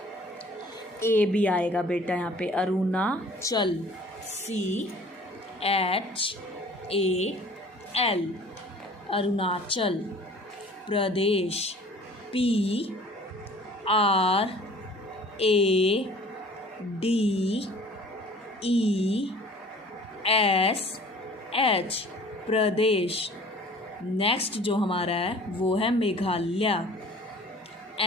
ए भी आएगा बेटा यहाँ पे, अरुणाचल। CHAL अरुणाचल प्रदेश। PRADESH प्रदेश। नेक्स्ट जो हमारा है वो है मेघालय।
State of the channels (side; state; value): both; normal; correlation 0.49